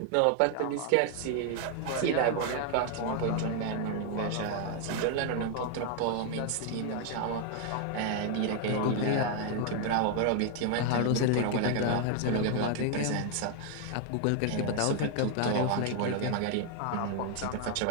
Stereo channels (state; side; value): different; both; correlation 0.00